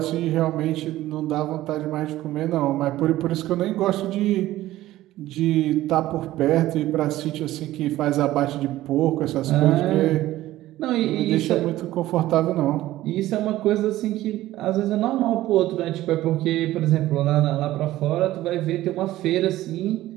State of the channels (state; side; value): quieter; left; 15.4 dB